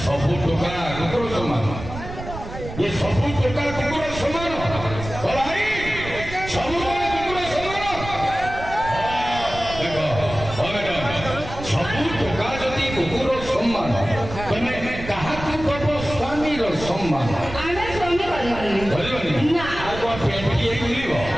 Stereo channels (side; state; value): right; noise; rumble, 10 dB below the sound